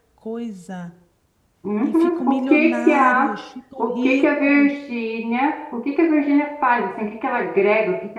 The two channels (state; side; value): identical; both; correlation 1.00